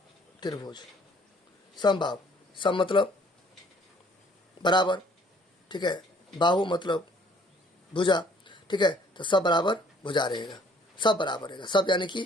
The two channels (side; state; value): both; normal; correlation 0.59